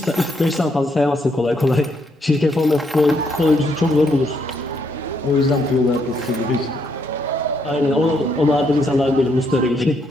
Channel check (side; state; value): both; normal; correlation 0.74